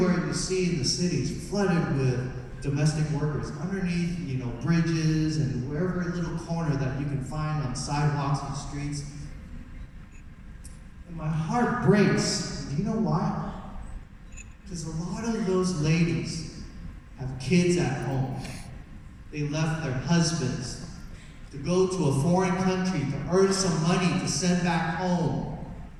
you see in the city is flooded with domestic workers underneath, bridges and wherever little corner that you can find on sidewalks and streets. And my heart breaks. Do you know why? Because a lot of those ladies have kids at home. They left their husbands to go to a foreign country to earn some money to send back home.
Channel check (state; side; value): identical; both; correlation 1.00